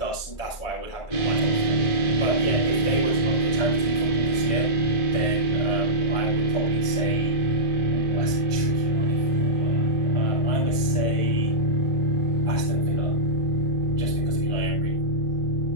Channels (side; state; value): right; late; 1.6 ms